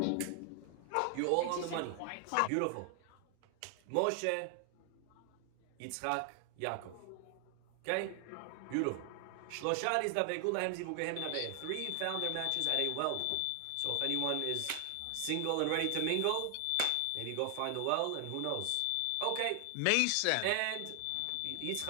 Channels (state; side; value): different; both; correlation 0.00